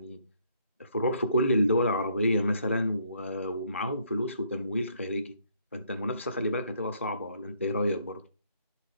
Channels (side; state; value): both; inverted; correlation -0.68